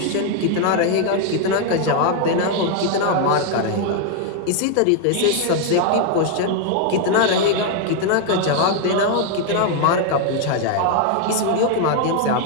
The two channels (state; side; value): different; both; correlation 0.00